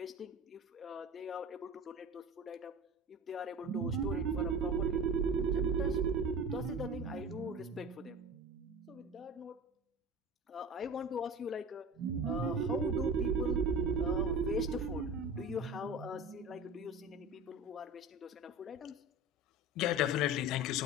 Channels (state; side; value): normal; both; correlation 0.34